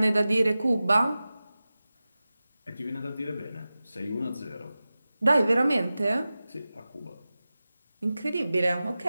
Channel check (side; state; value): both; inverted; correlation -0.95